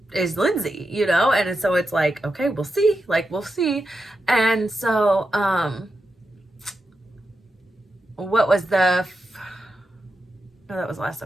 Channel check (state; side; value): normal; both; correlation 0.88